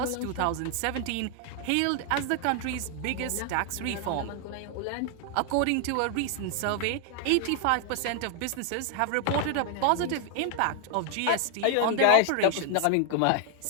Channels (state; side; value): different; both; correlation 0.00